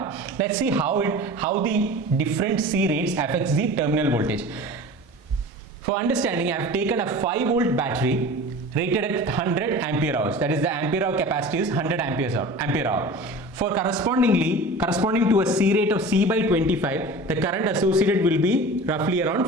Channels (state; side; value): normal; both; correlation 0.37